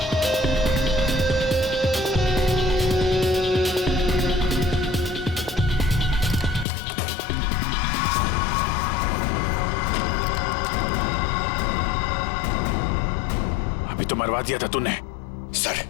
अभी तो मरवा दिया था तूने। सर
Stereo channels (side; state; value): right; drops out; at 6.7 s